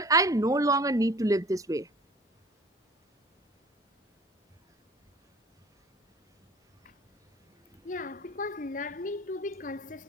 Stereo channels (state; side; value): normal; both; correlation 0.46